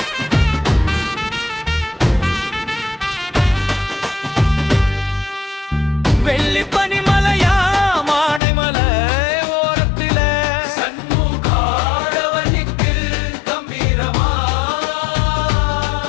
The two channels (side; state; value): right; drops out; at 8.4 s